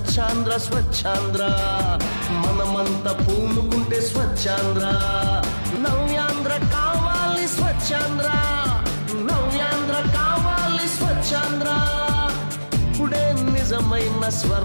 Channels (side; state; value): both; inverted; correlation -1.00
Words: స్వచ్ఛాంధ్ర మనమంతా పూనుకుంటే స్వచ్ఛాంధ్ర నవ్యాంధ్ర కావాలి స్వచ్ఛాంధ్ర నవ్యాంధ్ర కావాలి స్వచ్ఛాంధ్ర ఇప్పుడే నిజమైన